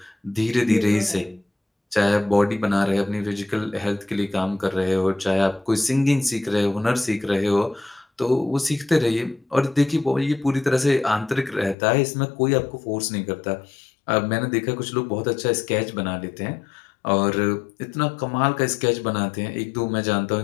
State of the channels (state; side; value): drops out; right; at 11.8 s